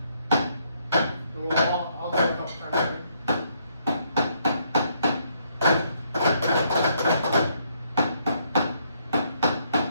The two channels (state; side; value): inverted; both; correlation -0.72